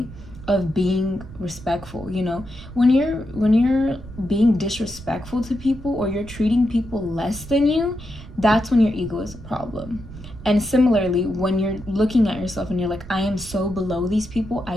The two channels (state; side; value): noise; right; rumble, 15 dB below the sound